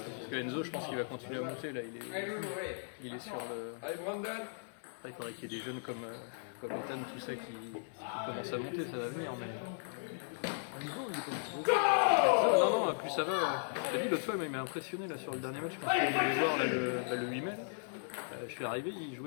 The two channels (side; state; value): right; silent; 53 dB below the other